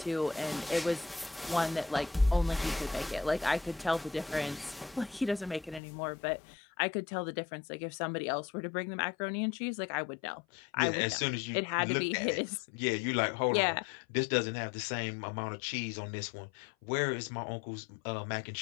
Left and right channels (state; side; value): drops out; right; at 5.8 s